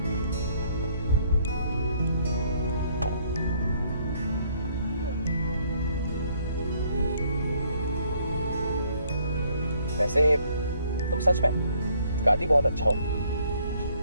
वैसे तुम सच में गाती बहुत अच्छा हो।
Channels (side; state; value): both; inverted; correlation -0.65